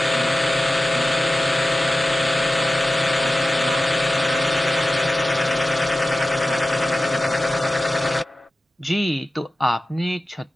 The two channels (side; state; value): both; normal; correlation 0.95